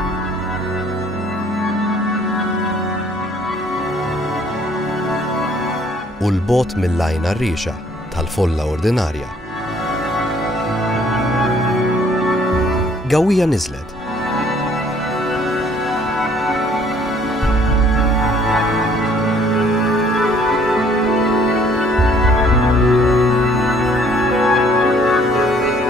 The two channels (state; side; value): normal; both; correlation 0.60